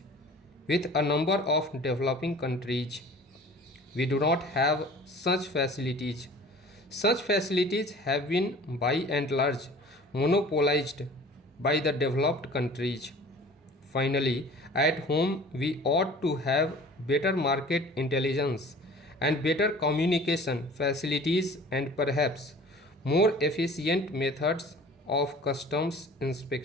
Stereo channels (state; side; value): normal; both; correlation 0.46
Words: with a number of developing countries. We do not have such facilities. Such facilities have been by and large monopolized by the developed countries. Finally, at home we ought to have better market intelligence and better communication facilities and perhaps more efficient methods of customs